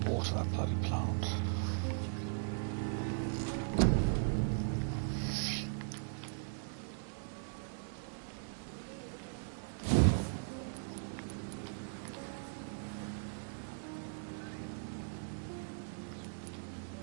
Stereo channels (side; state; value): left; silent; digital silence